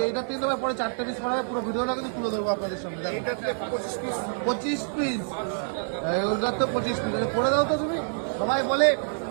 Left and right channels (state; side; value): silent; left; digital silence